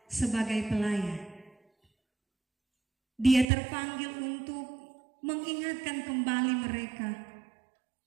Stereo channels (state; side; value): drops out; left; at 3.5 s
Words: sebagai pelayan, dia terpanggil untuk mengingatkan kembali mereka,